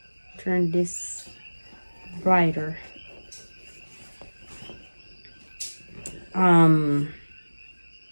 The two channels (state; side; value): inverted; both; correlation -1.00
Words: turn this brighter.